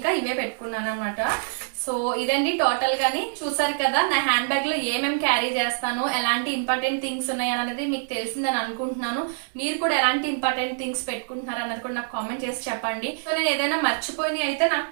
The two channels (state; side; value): silent; left; digital silence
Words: ఇవే పెట్టుకున్నాను అనమాట. సో ఇదండి టోటల్ గాని. చూసారు కదా నా హ్యాండ్ బ్యాగ్ లో ఏమేమి క్యారీ చేస్తాను, ఎలాంటి ఇంపార్టెంట్ థింగ్స్ ఉన్నాయి అనేది మీకు తెలిసిందని అనుకుంటున్నాను. మీరు కూడా ఎలాంటి ఇంపార్టెంట్ థింగ్స్ పెట్టుకుంటున్నారు అన్నది కూడా నాకు కామెంట్ చేసి చెప్పండి. సో నేను ఏదైనా మర్చిపోయి అయితే నాకు